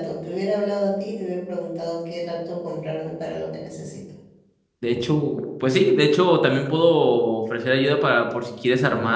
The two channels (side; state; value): both; identical; correlation 1.00